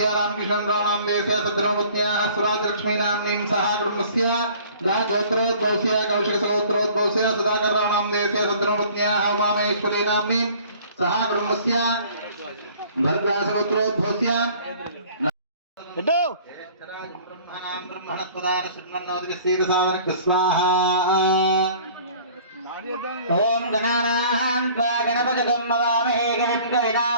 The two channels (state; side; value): inverted; both; correlation -0.51